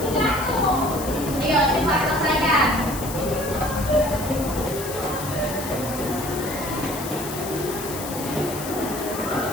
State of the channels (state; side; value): noise; left; hiss, 9 dB below the sound